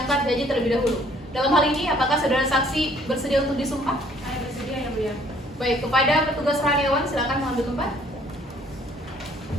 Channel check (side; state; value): both; normal; correlation 0.60